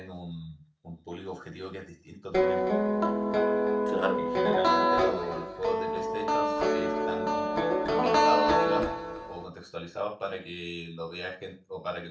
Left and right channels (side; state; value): both; identical; correlation 1.00